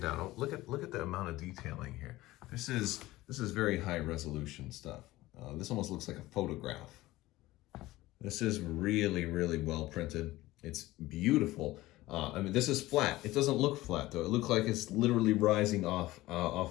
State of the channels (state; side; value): quieter; right; 17.8 dB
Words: down. Oh, look at the amount of detailing here. This is very high resolution stuff. This almost looks like a photograph. This is really well printed. It's beautiful. I mean, this is flat. It doesn't look flat though. It looks like it's literally rising off